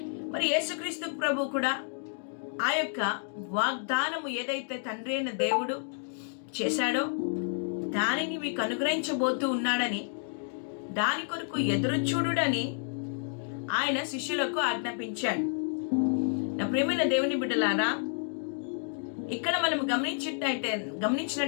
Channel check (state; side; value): silent; right; digital silence